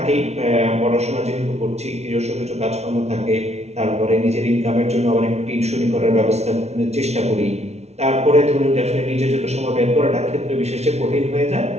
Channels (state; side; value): late; left; 0.31 ms